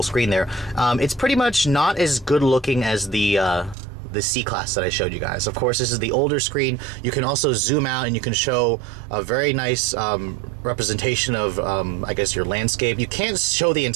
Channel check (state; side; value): drops out; left; at 3.8 s